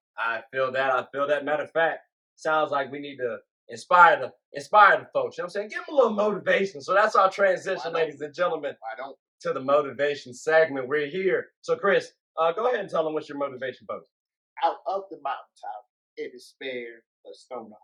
I feel that. Matter of fact, sounds like we need to inspire the folks. You know what I'm saying? Give them a little motivation. So that's our transition, ladies and gentlemen. I don't. To the motivation segment. We're here. So, Chris, go ahead and tell them what's your motivation post. Out of the mountaintop, it is spared a stone of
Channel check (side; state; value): both; identical; correlation 1.00